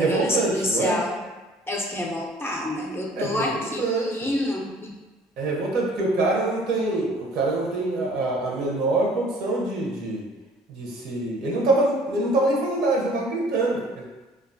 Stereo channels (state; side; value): normal; both; correlation 0.53